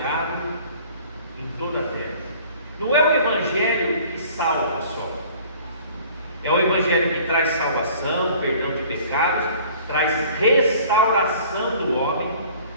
em toda a terra. Não é o evangelho que salva só, é o evangelho que traz salvação, perdão de pecados, traz restauração do homem.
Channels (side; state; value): both; inverted; correlation -0.50